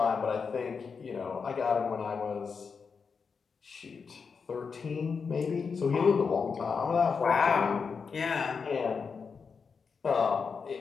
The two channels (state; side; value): quieter; right; 5.5 dB